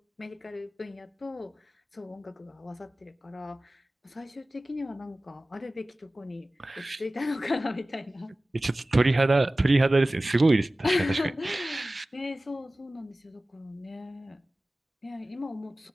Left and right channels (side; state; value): both; normal; correlation 0.97